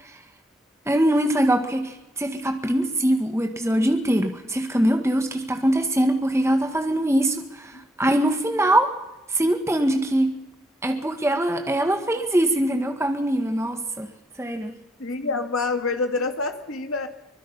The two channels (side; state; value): both; normal; correlation 0.77